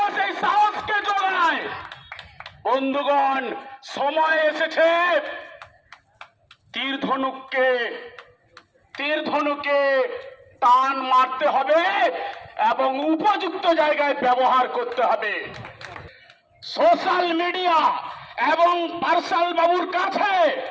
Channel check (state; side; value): identical; both; correlation 1.00